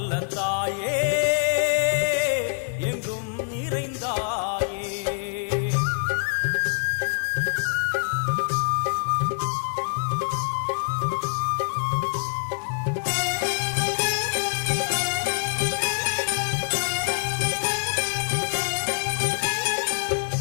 தாயே எங்கும் நிறைந்தாயே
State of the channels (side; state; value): right; silent; digital silence